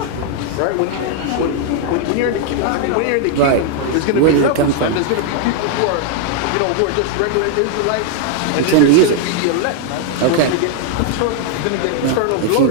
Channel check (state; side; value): different; both; correlation 0.00